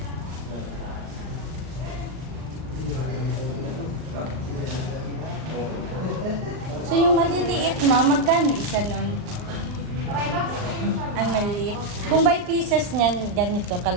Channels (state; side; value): late; left; 39 ms